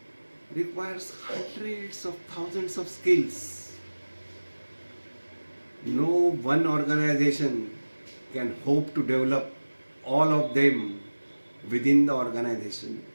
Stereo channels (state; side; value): inverted; both; correlation -1.00